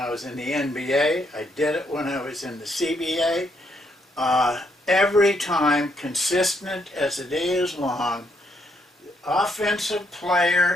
was in the NBA. I did it when I was in the CBA. Every time, consistent as the day is long, offensive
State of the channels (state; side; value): normal; both; correlation 0.74